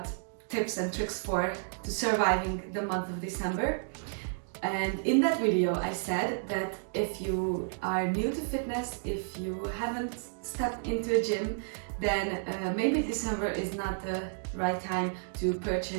tips and tricks to surviving the month of December. And in that video I said that if you are new to fitness, if you haven't stepped into a gym, then maybe December is not the right time to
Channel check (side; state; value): left; silent; digital silence